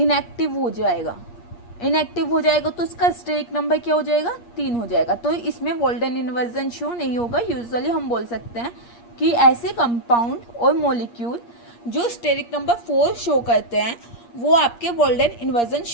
हो जाएगा। तो इसका स्टेरिक नंबर क्या हो जाएगा? 3 हो जाएगा। तो इसमें वॉल्डन इन्वर्जन शो नहीं होगा। यूजुअली हम बोल सकते हैं कि ऐसे कंपाउंड और मॉलिक्यूल जो स्टेरिक नंबर 4 शो करते हैं वो आपके वॉल्डन इन्वर्जन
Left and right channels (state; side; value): late; right; 8.5 ms